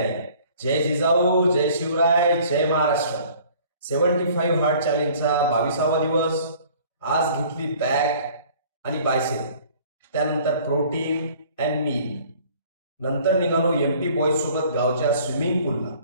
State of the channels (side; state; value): both; inverted; correlation -0.53